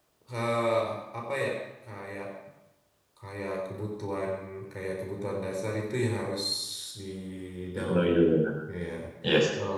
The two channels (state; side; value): identical; both; correlation 1.00